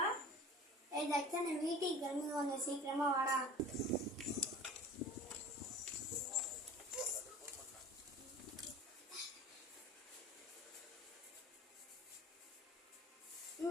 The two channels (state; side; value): normal; both; correlation 0.42